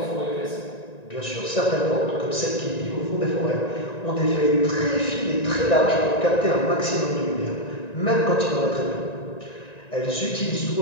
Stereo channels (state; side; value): late; right; 1.9 ms